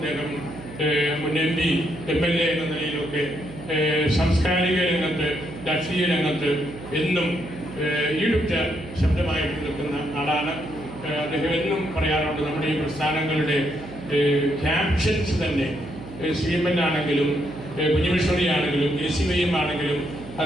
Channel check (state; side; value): noise; right; hum, 14 dB below the sound